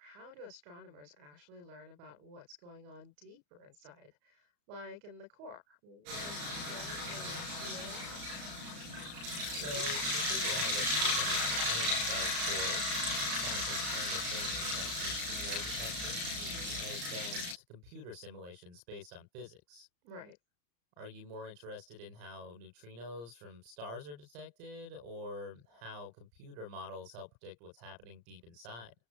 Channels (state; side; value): late; left; 34 ms